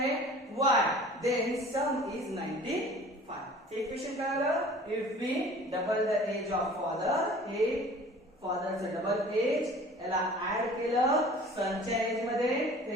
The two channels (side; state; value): both; normal; correlation 0.46